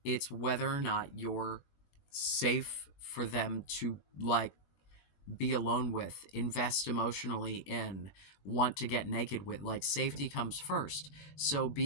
It's whether or not you're safe for them to like be alone with, invest emotionally in, want to get naked with. Like, safety comes first. So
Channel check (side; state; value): right; late; 20 ms